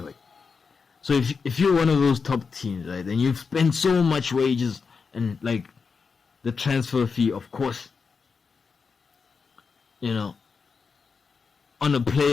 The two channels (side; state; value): right; quieter; 5.2 dB